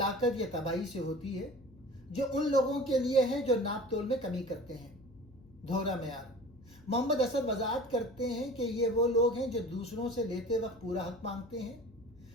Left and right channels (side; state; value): left; noise; hum, 25 dB below the sound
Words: या तबाही से होती है जो उन लोगों के लिए है जो नापतोल में कमी करते हैं। दोहरा मेयार। मोहम्मद असद वजाहत करते हैं कि ये वो लोग हैं जो दूसरों से लेते वक्त पूरा हक मांगते